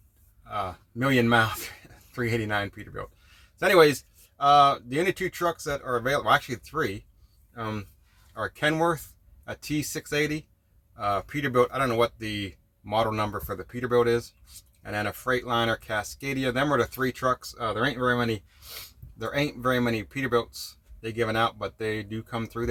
million mile 389 Peterbilt. So anyways, the only two trucks that are available, well, actually three, are Kenworth, a T680, Peterbilt. I don't know what the model number for the Peterbilt is, and then a Freightliner Cascadia. Them are the three trucks. There ain't very many Peterbilts they given out, but they do come through,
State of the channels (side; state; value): both; identical; correlation 1.00